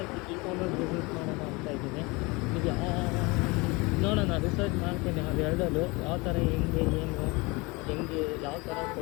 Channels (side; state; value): right; quieter; 25.6 dB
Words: ಇ ಕಾಮರ್ಸ್ ಬಿಸ್ನೆಸ್ ಮಾಡೋಣ ಅಂತ ಇದ್ದೀನಿ. ಈಗ ನೋಡೋಣ, ರಿಸರ್ಚ್ ಮಾಡ್ತೀನಿ ಅದೆರಡಲ್ಲೂ ಯಾವ ಥರ ಹೆಂಗೆ ಯಾವ ಥರ